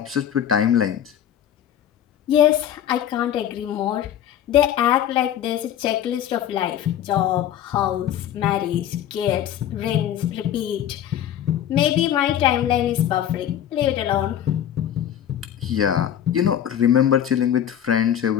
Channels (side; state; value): right; quieter; 10.4 dB